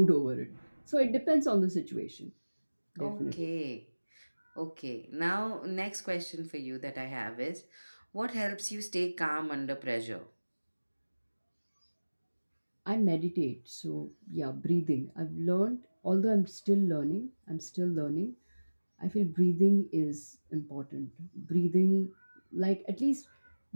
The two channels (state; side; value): inverted; both; correlation -1.00